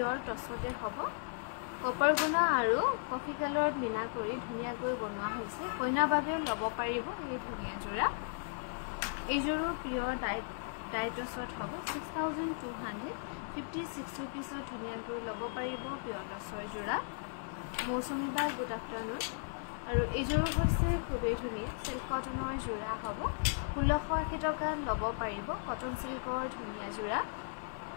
টছতে হ'ব কপাৰ গুণা আৰু কফি কালাৰত মিনা কৰি ধুনীয়াকৈ বনোৱা হৈছে কইনা বাবেও ল'ব পাৰিব এই ধুনীয়া যোৰা এইযোৰো পিয়ৰ ডাই টছত হ'ব 6256 रुपिसত ধুনীয়াকৈ ল'ব পাৰিব পিয়ৰ টছৰ যোৰা মৌচুমী বা গুড আফটাৰনুন আৰু এইযোৰ হৈছে খুবেই ধুনীয়া সিল্ক কটনৰ যোৰা হ'ব 1680 টকাত ল'ব পাৰিব কটন সিল্কৰ ধুনীয়া যোৰা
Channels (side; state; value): right; silent; digital silence